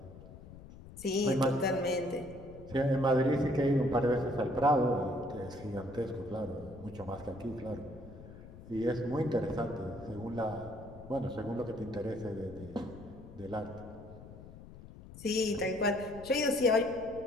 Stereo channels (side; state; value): left; noise; rumble, 16 dB below the sound